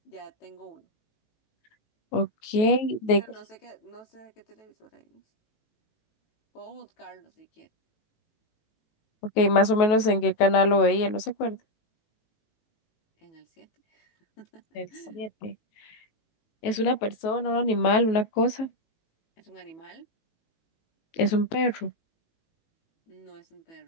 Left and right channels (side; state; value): right; late; 18 ms